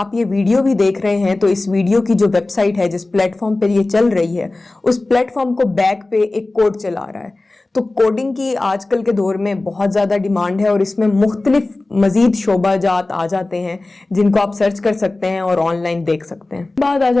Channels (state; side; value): quieter; right; 3.0 dB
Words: ये वीडियो भी देख रहे हैं तो इस वीडियो की जो वेबसाइट है, जिस प्लेटफॉर्म पे ये चल रही है, उस प्लेटफॉर्म को बैक पे एक कोड चला रहा है। तो कोडिंग की आजकल के दौर में बहुत ज़्यादा डिमांड है और इसमें मुख्तलिफ मज़ीद शोबाजात आ जाते हैं जिनको आप सर्च कर सकते हैं और ऑनलाइन देख सकते हैं। बात आ